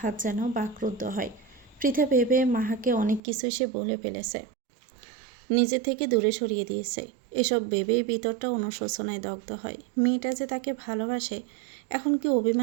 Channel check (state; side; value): drops out; left; at 3.2 s